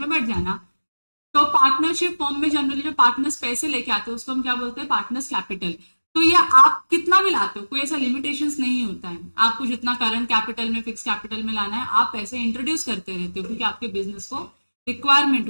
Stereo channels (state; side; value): inverted; both; correlation -1.00